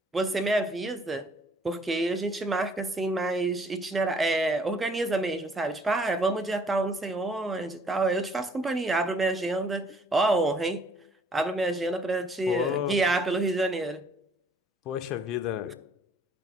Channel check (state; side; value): normal; both; correlation 0.61